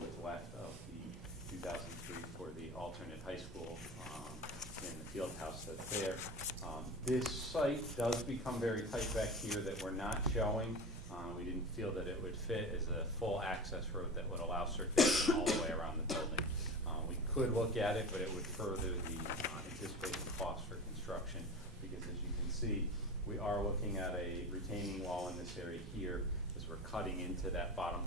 left of the 2003 for the alternate high school in the field house that's there. This site does become very tight back here that we're not showing. We didn't feel that it would fit as a full access road that would allow circulation all the way around the building. We could look at it, but it would further the anticipated cost for construction, because as you can see, we are looking at a retaining wall in this area here as we're cutting into that bottom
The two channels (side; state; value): both; normal; correlation 0.31